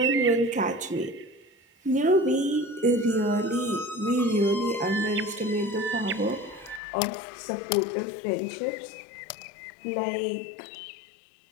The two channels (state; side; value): drops out; right; at 6.8 s